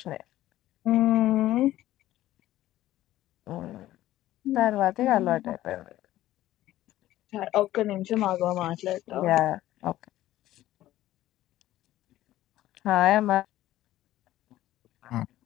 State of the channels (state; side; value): quieter; right; 14.6 dB